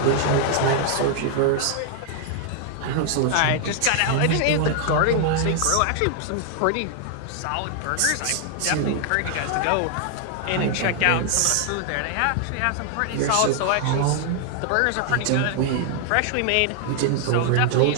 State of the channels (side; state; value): both; different; correlation 0.00